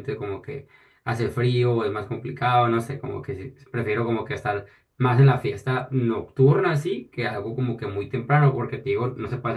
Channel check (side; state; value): both; identical; correlation 1.00